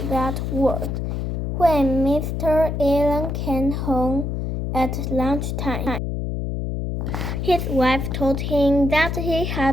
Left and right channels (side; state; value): left; noise; hum, 2 dB below the sound